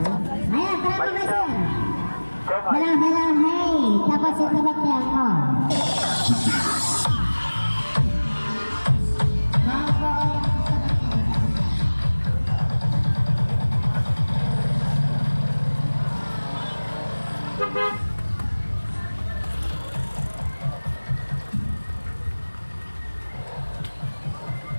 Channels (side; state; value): both; inverted; correlation -1.00